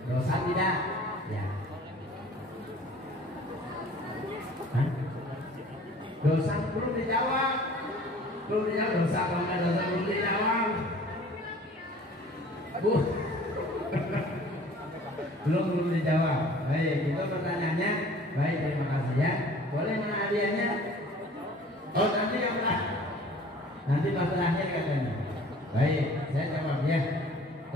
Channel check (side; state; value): both; normal; correlation 0.49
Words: dosa tidak? Ya. Hah? Dosa belum dijawab, dosa kalau nggak dosa belum dijawab. Bu, belum dijawab. Baik, itu pertanyaannya. Baik, terima kasih ya. Boleh mana hadiahnya? Oh nanti yang nanti pas terakhir katanya. Baik, saya jawab ya.